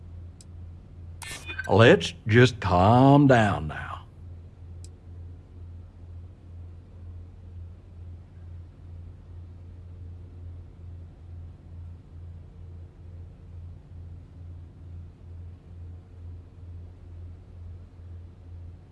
Let's just calm down now.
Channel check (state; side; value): identical; both; correlation 1.00